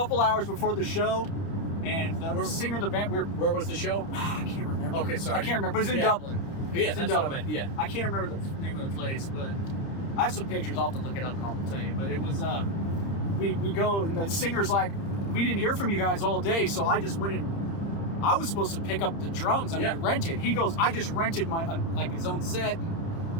hours before the show, and the singer of the band, Where was the show? I can't remember. Okay, sorry. I can't remember. It was in Dublin. Yeah, It's in that's what I Dublin. meant. Yeah. I can't remember the name of the place, but I have some pictures. I'll have to look it up and I'll tell you. But it was, we go, and the singer's like, we didn't hear from you guys all day, so I just went and I was supposed to pick up the drums and we rented. He goes, I just rented my like his own set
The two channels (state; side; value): late; right; 30 ms